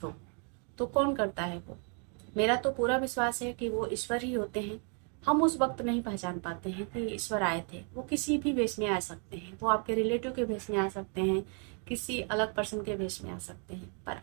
तो कौन करता है वो? मेरा तो पूरा विश्वास है कि वो ईश्वर ही होते हैं। हम उस वक्त नहीं पहचान पाते हैं कि ईश्वर आए थे। वो किसी भी वेश में आ सकते हैं, वो आपके रिलेटिव के वेश में आ सकते हैं, किसी अलग पर्सन के वेश में आ सकते हैं, पर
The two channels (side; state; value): left; quieter; 39.5 dB